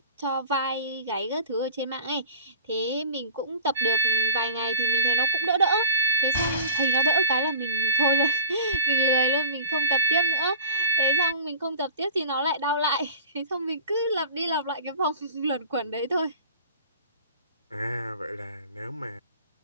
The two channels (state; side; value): inverted; both; correlation -0.38